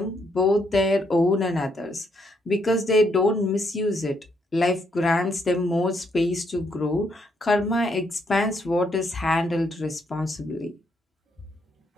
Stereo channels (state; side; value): normal; both; correlation 0.74